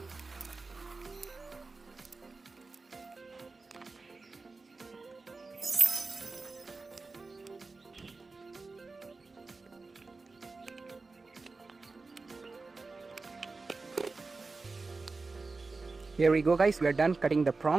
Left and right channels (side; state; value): left; quieter; 3.9 dB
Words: Here we go guys, we are done cutting the